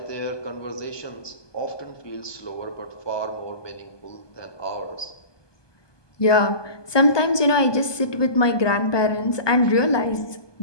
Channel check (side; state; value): right; late; 1.2 ms